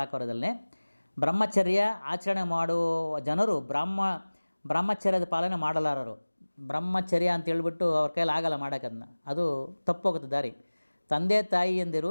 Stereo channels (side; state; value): both; inverted; correlation -1.00